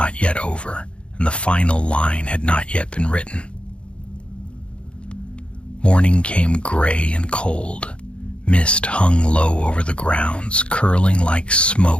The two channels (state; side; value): late; right; 0.058 ms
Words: yet over, and the final line had not yet been written. Morning came gray and cold. Mist hung low over the grounds, curling like